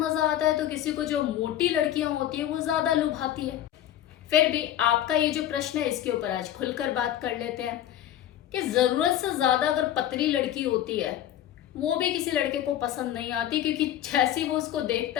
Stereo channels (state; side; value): quieter; right; 11.9 dB